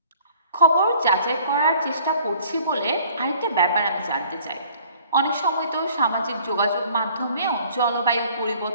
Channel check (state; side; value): inverted; both; correlation -0.54